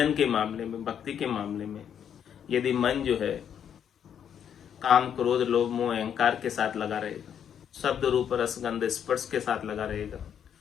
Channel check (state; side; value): quieter; right; 8.7 dB